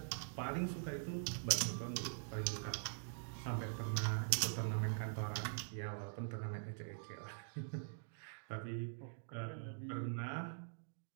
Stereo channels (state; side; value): silent; left; digital silence